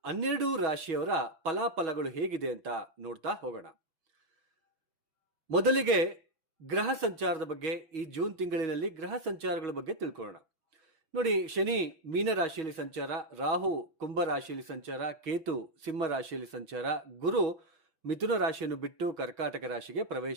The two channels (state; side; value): late; left; 6.2 ms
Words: 12 ರಾಶಿಯವರ ಫಲಾಫಲಗಳು ಹೇಗಿದೆ ಅಂತ ನೋಡ್ತಾ ಹೋಗೋಣ. ಮೊದಲಿಗೆ ಗ್ರಹ ಸಂಚಾರದ ಬಗ್ಗೆ, ಈ ಜೂನ್ ತಿಂಗಳಿನಲ್ಲಿ ಗ್ರಹ ಸಂಚಾರಗಳ ಬಗ್ಗೆ ತಿಳ್ಕೊಳ್ಳೋಣ. ನೋಡಿ, ಶನಿ ಮೀನ ರಾಶಿಯಲ್ಲಿ ಸಂಚಾರ, ರಾಹು ಕುಂಭ ರಾಶಿಯಲ್ಲಿ ಸಂಚಾರ, ಕೇತು ಸಿಂಹ ರಾಶಿಯಲ್ಲಿ ಸಂಚಾರ, ಗುರು ಮಿಥುನ ರಾಶಿಯನ್ನು ಬಿಟ್ಟು ಕರ್ಕಾಟಕ ರಾಶಿಗೆ